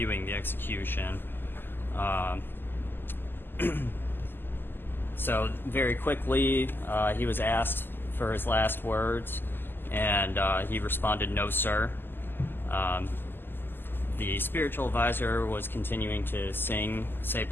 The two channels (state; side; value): late; right; 0.096 ms